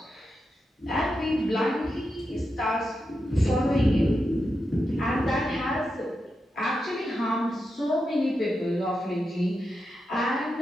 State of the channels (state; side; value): normal; both; correlation 0.87